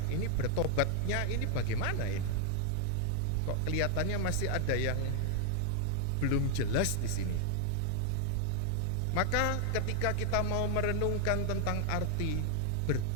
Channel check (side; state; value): both; different; correlation 0.00